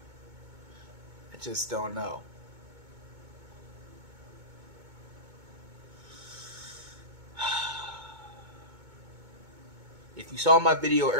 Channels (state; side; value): late; left; 2.2 ms